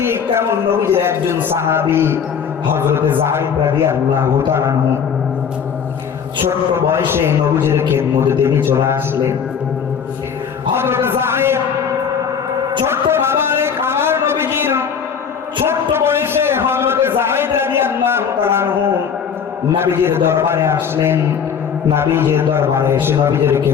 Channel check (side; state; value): right; quieter; 7.1 dB